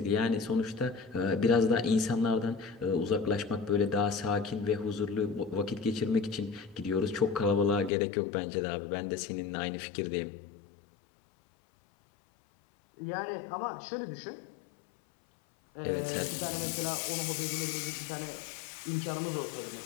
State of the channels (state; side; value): drops out; right; at 7.9 s